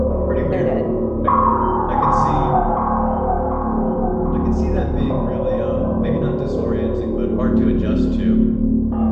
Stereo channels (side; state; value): both; identical; correlation 1.00